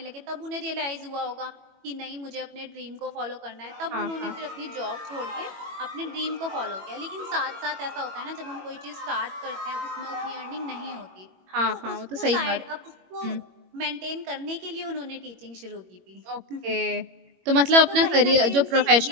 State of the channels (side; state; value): left; late; 21 ms